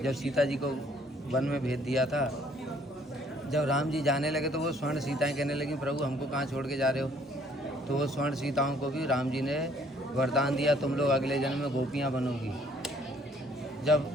जब सीता जी को वन में भेज दिया था, जब राम जी जाने लगे तो वो स्वर्ण सीताएं कहने लगी, प्रभु हमको कहाँ छोड़ के जा रहे हो। तो वो स्वर्ण सीताओं को भी राम जी ने वरदान दिया, तुम लोग अगले जन्म में गोपियाँ बनोगी। जब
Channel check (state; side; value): normal; both; correlation 0.61